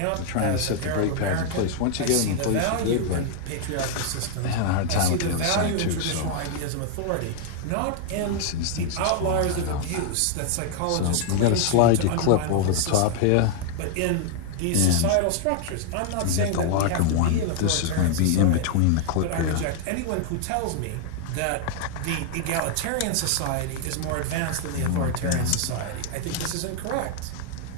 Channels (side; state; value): both; different; correlation 0.00